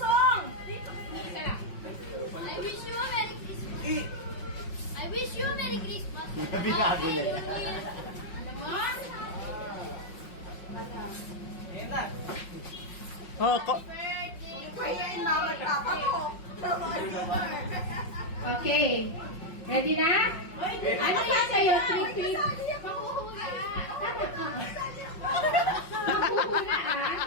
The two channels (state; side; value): late; right; 5.5 ms